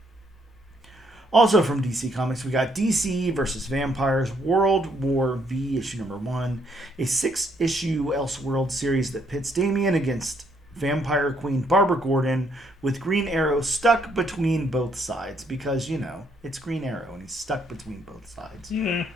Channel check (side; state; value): both; normal; correlation 0.71